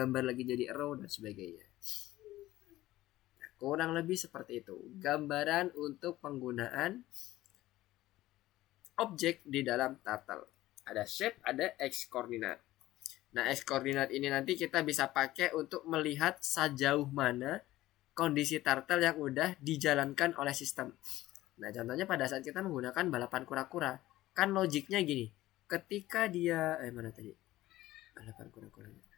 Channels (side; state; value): right; quieter; 16.2 dB